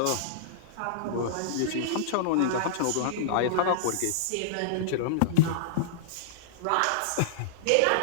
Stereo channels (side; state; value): both; different; correlation -0.02